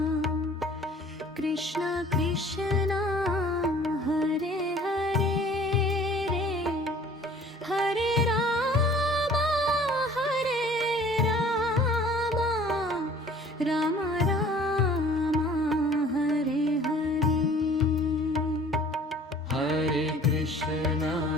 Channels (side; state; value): both; normal; correlation 0.51